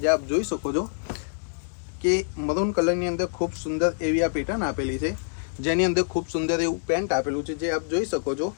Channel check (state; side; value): silent; right; digital silence